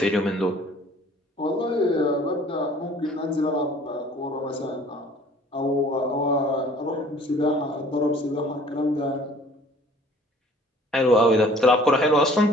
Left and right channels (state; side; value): normal; both; correlation 0.52